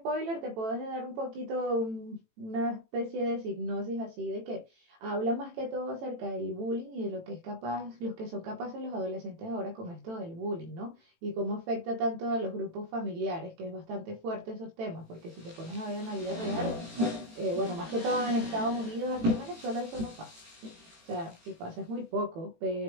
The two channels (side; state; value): left; late; 18 ms